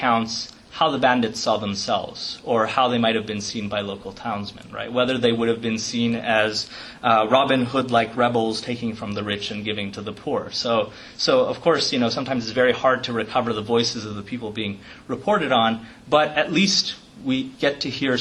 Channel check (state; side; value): identical; both; correlation 1.00